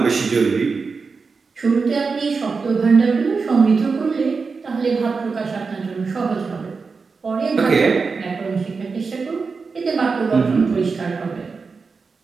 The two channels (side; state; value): left; quieter; 4.7 dB